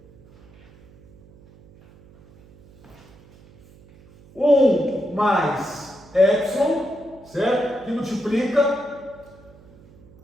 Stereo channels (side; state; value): right; noise; hum, 25 dB below the sound